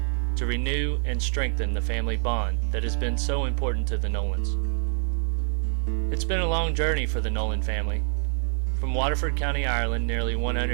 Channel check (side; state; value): left; silent; 61 dB below the other